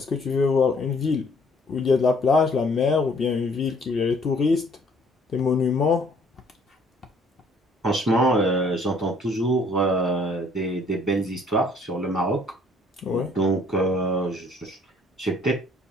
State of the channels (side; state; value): both; normal; correlation 0.60